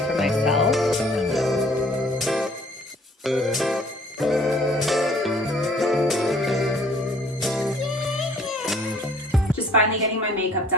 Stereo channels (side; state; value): both; normal; correlation 0.57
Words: myself. Just finally getting my makeup